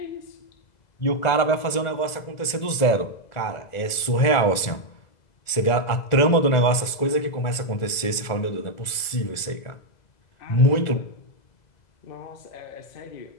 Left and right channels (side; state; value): right; late; 2.0 ms